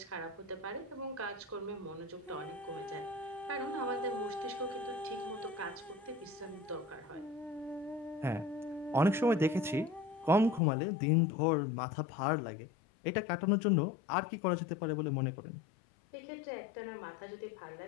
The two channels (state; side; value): drops out; right; at 10.6 s